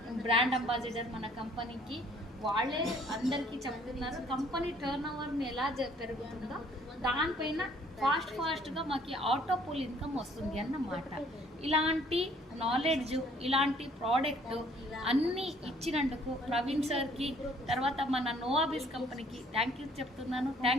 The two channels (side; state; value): both; normal; correlation 0.60